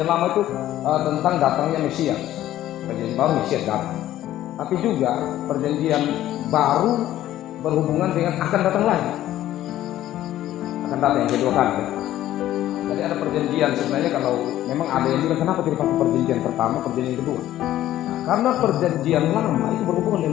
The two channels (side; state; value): right; quieter; 13.5 dB